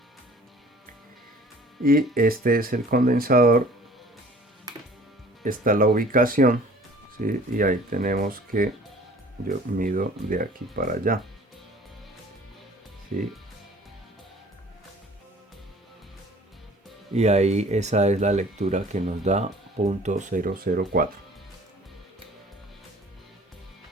y este es el condensador, está la ubicación, ¿sí? Y ahí tenemos que yo mido de aquí para allá, ¿sí? Y ahí esa es la lectura que nos da 0.004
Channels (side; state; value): both; normal; correlation 0.50